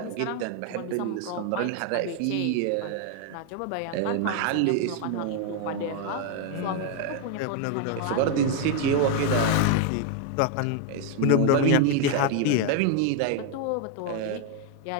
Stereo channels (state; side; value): different; both; correlation 0.00